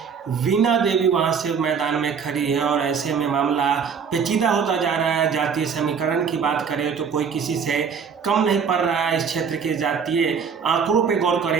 वीणा देवी वहां से मैदान में खड़ी है और ऐसे में मामला पेचीदा होता जा रहा है। जातीय समीकरण की बात करें तो कोई किसी से कम नहीं पड़ रहा है। इस क्षेत्र के जातीय आंकड़ों पे गौर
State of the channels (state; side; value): quieter; left; 6.4 dB